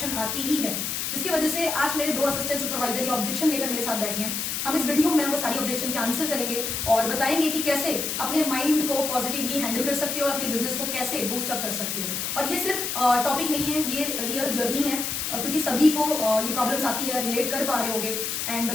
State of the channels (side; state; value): left; noise; hiss, 2 dB below the sound